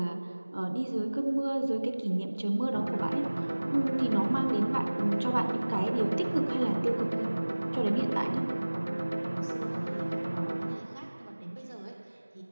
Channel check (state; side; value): inverted; both; correlation -1.00